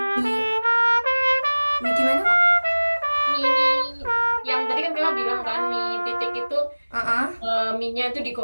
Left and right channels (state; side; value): inverted; both; correlation -1.00